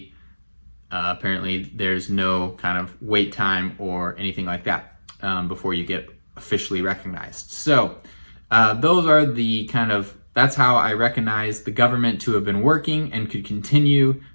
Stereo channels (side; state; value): both; inverted; correlation -1.00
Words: Apparently, there's no kind of wait time or anything like that before you get officially recognized. So those are the kind of, that's how I recognize the government to have been working and could continue